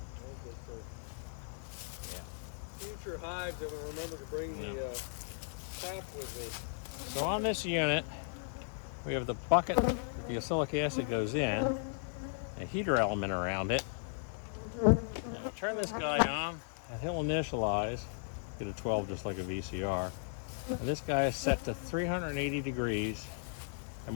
Future hives, I will remember to bring the tap with me. So on this unit, we have the bucket that the oxalic acid goes in, a heater element around it. And we'll turn this guy on, and he'll initialize, get a 12 just like a VCR. And this guy is set to 380 degrees.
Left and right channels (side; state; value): right; silent; 54 dB below the other